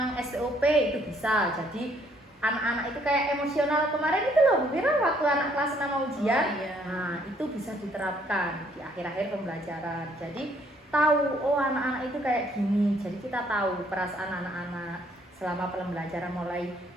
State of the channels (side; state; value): both; normal; correlation 0.65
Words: STOP itu bisa. Jadi anak-anak itu kayak emosional kemarin itu loh Bu Viro waktu anak kelas 6 mau ujian. Oh, iya. Nah, itu bisa diterapkan di akhir-akhir pembelajaran. Jadi tahu oh anak-anak itu kayak gini. Jadi kita tahu perasaan anak-anak selama pembelajaran mulai